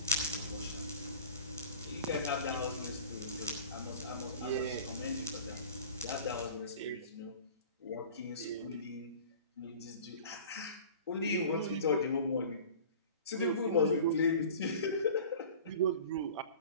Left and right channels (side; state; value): both; inverted; correlation -0.42